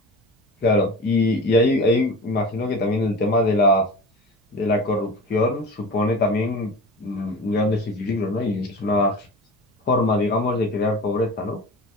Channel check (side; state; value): both; normal; correlation 0.34